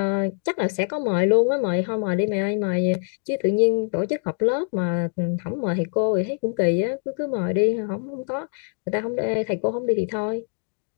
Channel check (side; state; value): right; silent; 63 dB below the other